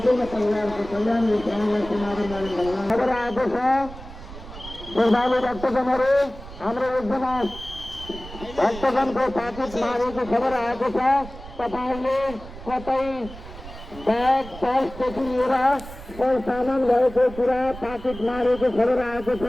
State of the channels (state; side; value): noise; right; rumble, 14 dB below the sound